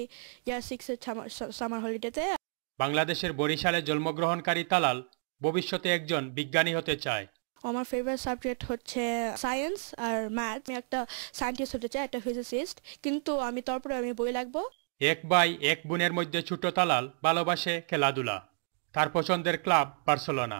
ইয়ার 6-এর সামার হলিডেতে। বাংলাদেশের বরিশালে জন্মগ্রহণকারী তালাল ভবিষ্যতে একজন বিজ্ঞানী হতে চায়। আমার ফেভারিট সাবজেক্ট হচ্ছে সায়েন্স আর ম্যাথ। আমি একটা সায়েন্টিস্ট হতে চাই, একটা ফিজিসিস্ট, কিন্তু তারপরে আমি বই লিখবো। এক ভাই এক বোনের মধ্যে ছোট তালাল ভালোবাসে খেলাধুলা। তার পছন্দের ক্লাব বার্সেলোনা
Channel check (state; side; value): silent; left; 57 dB below the other